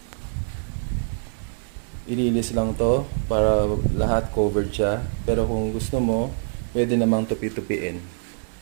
ilinis lang to para lahat covered siya. Pero kung gusto mo, pwede namang tupi-tupiin.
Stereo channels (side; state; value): left; silent; digital silence